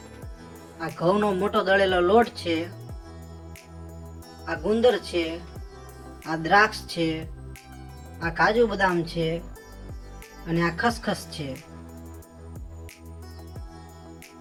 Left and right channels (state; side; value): identical; both; correlation 1.00